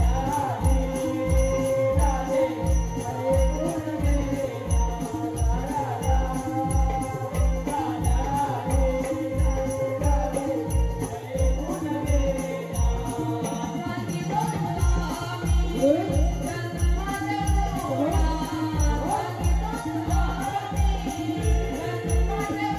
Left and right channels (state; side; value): identical; both; correlation 1.00